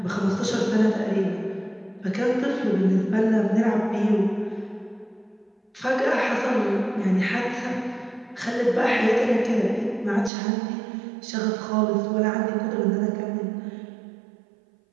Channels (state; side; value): drops out; left; at 10.3 s